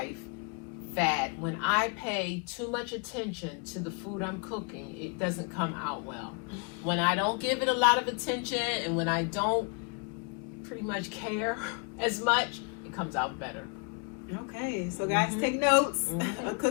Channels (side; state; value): right; quieter; 33.5 dB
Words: that when I pay too much attention to the food I'm cooking, it doesn't come out well. When I don't give it a lot of attention and when I don't pretty much care as much, it comes out better. Okay, so guys, take notes. A